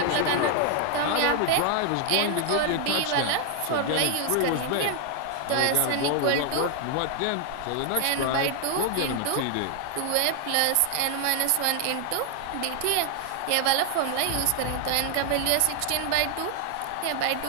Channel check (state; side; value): different; both; correlation 0.00